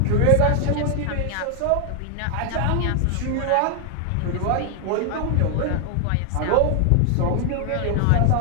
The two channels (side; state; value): both; different; correlation 0.00